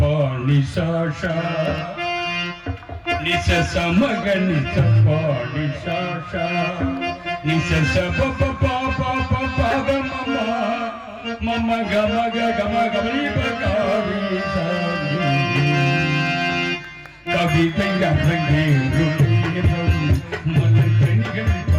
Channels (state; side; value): identical; both; correlation 1.00